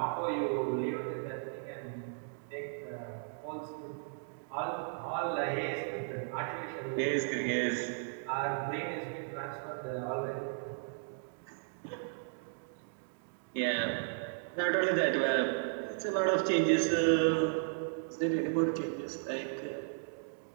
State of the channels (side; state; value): left; silent; digital silence